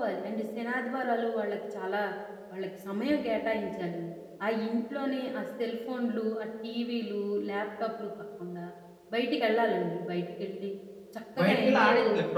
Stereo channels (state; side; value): identical; both; correlation 1.00